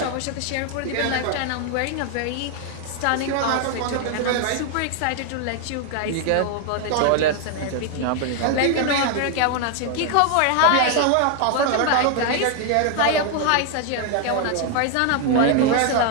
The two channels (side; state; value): both; different; correlation 0.01